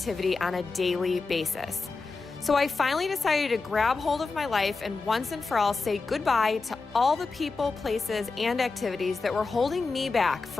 on a daily basis. So I finally decided to grab hold of my life and once and for all say goodbye to all the people, places, and activities that were holding me back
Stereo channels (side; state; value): right; quieter; 4.1 dB